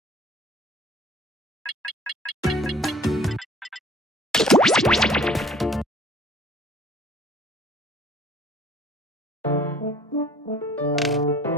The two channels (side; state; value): both; normal; correlation 0.52